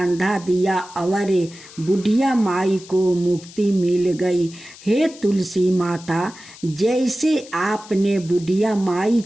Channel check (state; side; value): noise; left; hiss, 19 dB below the sound